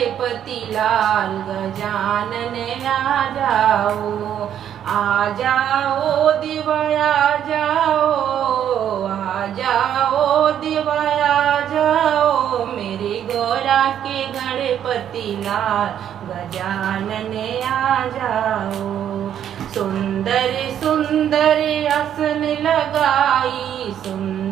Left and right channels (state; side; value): quieter; left; 9.9 dB